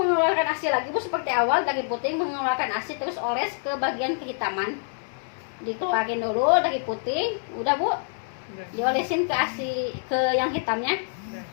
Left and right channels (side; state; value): right; silent; 61 dB below the other